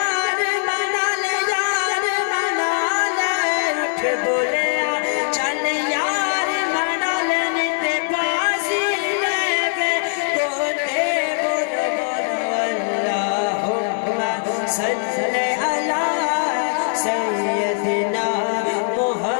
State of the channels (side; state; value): right; silent; 62 dB below the other